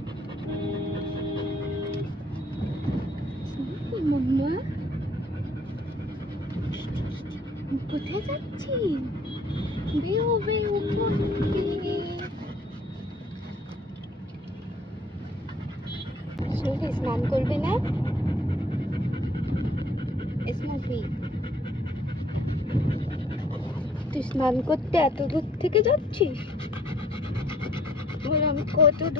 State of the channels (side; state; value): both; normal; correlation 0.60